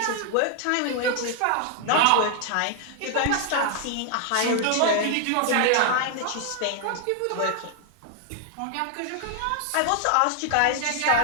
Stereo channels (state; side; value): different; both; correlation 0.00